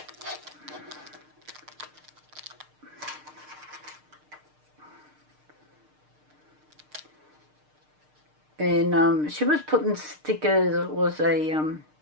And she was putting stickers, it was a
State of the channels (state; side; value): late; left; 6.6 ms